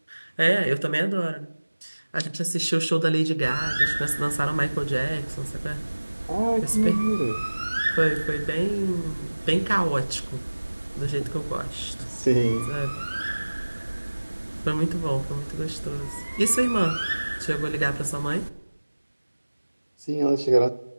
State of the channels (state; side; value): inverted; both; correlation -1.00